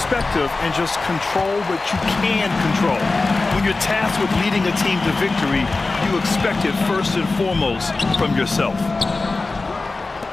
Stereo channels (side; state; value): right; quieter; 3.5 dB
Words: and just control what you can control. When you're tasked with leading a team to victory, you expect it first and foremost from yourself.